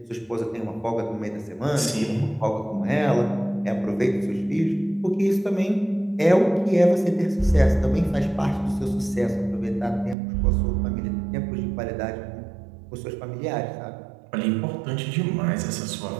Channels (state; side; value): drops out; left; at 10.2 s